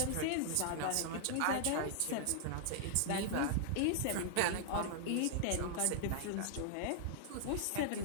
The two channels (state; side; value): different; both; correlation -0.01